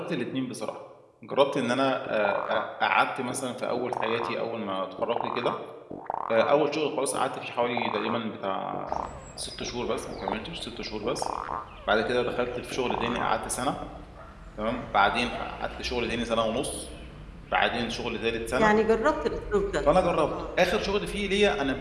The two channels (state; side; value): identical; both; correlation 1.00